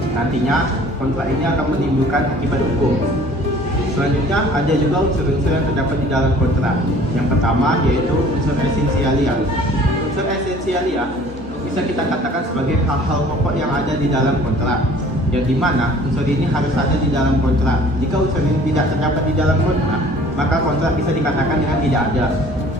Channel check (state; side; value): normal; both; correlation 0.51